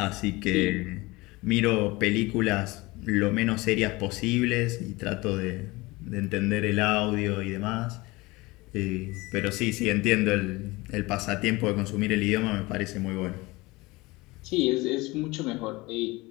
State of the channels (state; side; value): quieter; right; 22.2 dB